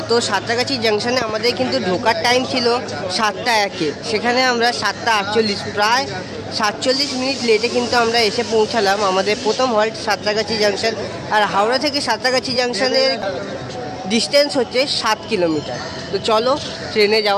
তো সাঁতরাগাছি জাংশনে আমাদের কিন্তু ঢোকার টাইম ছিল 7:01, সেখানে আমরা 7:48 প্রায় 47 মিনিট লেটে কিন্তু আমরা এসে পৌঁছালাম। আমাদের প্রথম হল্ট সাঁতরাগাছি জাংশন, আর হাওড়া থেকে সাঁতরাগাছি জাংশনের ডিস্টেন্স হচ্ছে 7 কিলোমিটার। তো চলো ট্রেনে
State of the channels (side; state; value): both; identical; correlation 1.00